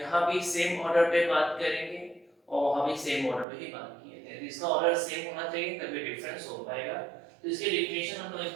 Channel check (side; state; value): left; drops out; at 3.5 s